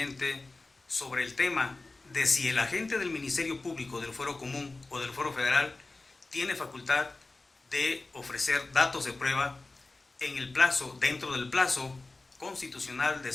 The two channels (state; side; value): quieter; right; 3.3 dB